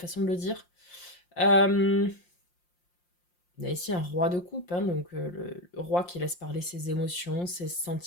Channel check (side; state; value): right; late; 5.7 ms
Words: de le dire. On a ici un roi de coupe, hein, donc le roi qui laisse parler ses émotions, ses